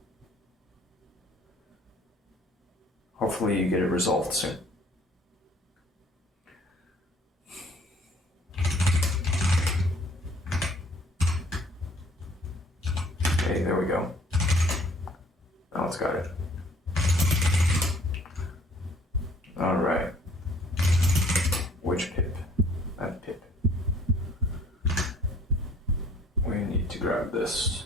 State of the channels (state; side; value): normal; both; correlation 0.57